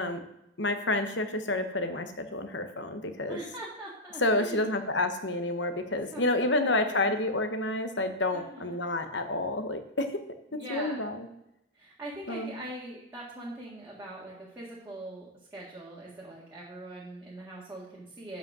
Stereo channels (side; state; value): both; normal; correlation -0.07